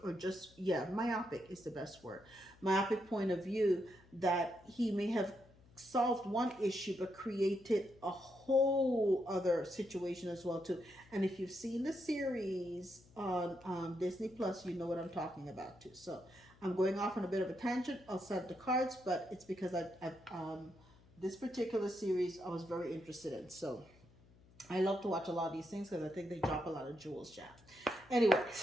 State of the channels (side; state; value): left; noise; hum, 26 dB below the sound